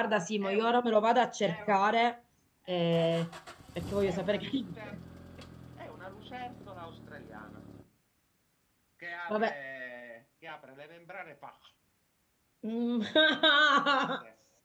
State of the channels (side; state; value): both; identical; correlation 1.00